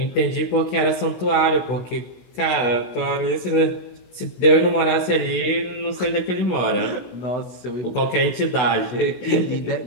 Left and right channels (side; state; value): right; late; 16 ms